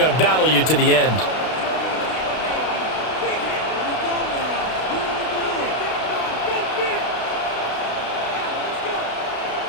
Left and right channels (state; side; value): late; right; 32 ms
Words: to battle you to the end.